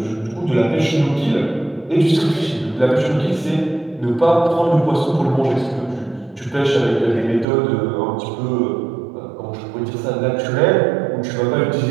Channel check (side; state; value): left; drops out; at 7.5 s